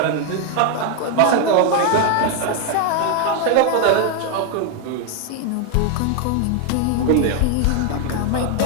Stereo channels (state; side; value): different; both; correlation 0.01